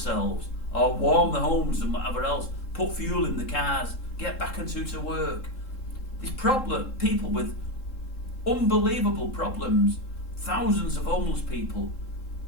or warm their homes and whatever else, put fuel in the cars, get back to work. These people with unbelievable problems, thousands of homeless people,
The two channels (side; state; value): right; late; 3.7 ms